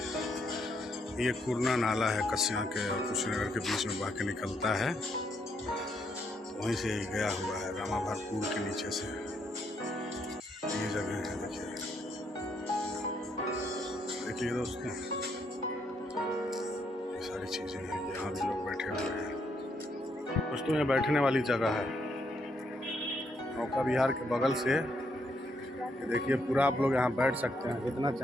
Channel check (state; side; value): normal; both; correlation 0.75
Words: ये कुरना नाला है कस्या के और कुशीनगर के बीच में बह के निकलता है, वहीं से गया हुआ है रामाभार पुल के नीचे से। ये जगह है देखिए, देखिए दोस्तों, ये सारी चीज़ें हैं, यहाँ भी लोग बैठे हुए हैं दोस्तों। ये बैठने वाली जगह है नौका विहार के बगल से। ये देखिए पूरा आप लोग यहाँ बैठ सकते हैं, जितना